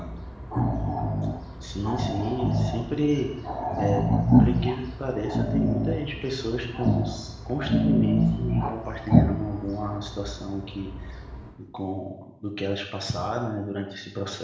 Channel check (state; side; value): identical; both; correlation 1.00